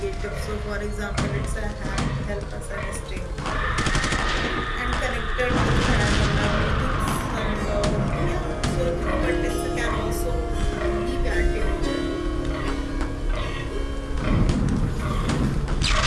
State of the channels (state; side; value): identical; both; correlation 1.00